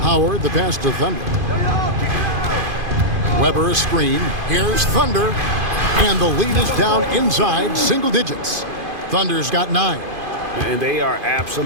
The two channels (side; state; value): left; late; 2.5 ms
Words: Howard, the pass to Thunder. Weber a screen. Here's Thunder. And the lead is down inside single digits. Thunder's got 9. And they are